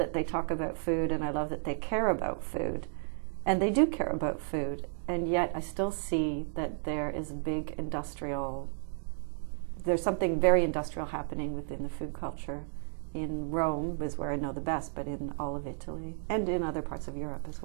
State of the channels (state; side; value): silent; left; digital silence